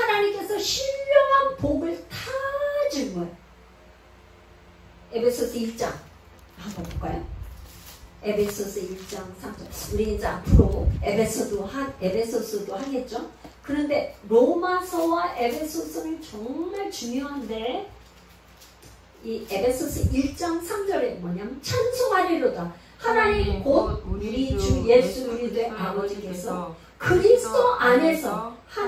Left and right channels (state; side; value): identical; both; correlation 1.00